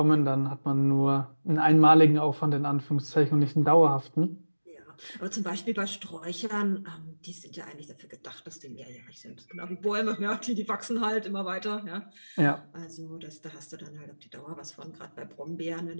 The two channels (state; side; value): inverted; both; correlation -1.00